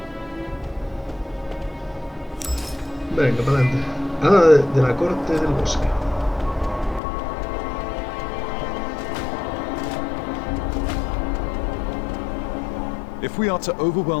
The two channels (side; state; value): right; drops out; at 7.0 s